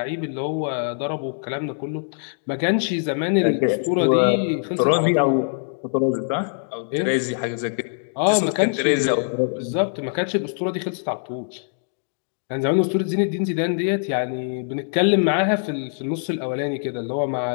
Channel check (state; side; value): silent; right; digital silence